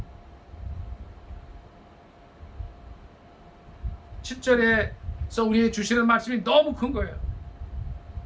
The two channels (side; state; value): both; identical; correlation 1.00